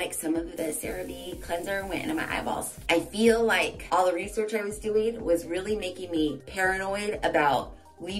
some of the CeraVe cleanser went into my eyeballs. I feel like all the research I was doing was really making me paranoid about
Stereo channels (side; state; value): both; identical; correlation 1.00